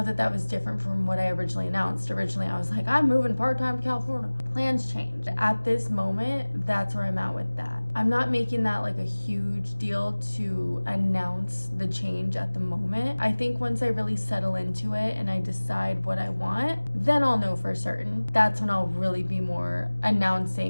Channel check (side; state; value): both; inverted; correlation -1.00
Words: that that was different from what I originally announced. Originally, I was like, I'm moving part-time to California. Plans changed. At this moment, that's where I'm at with that. I'm not making that like a huge deal to announce the change at the moment. I think once I really settle into it and I decide what I want, then I'll know for certain. That's when I'll really be more